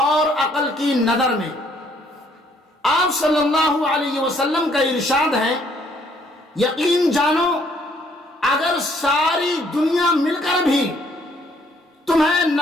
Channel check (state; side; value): normal; both; correlation 0.65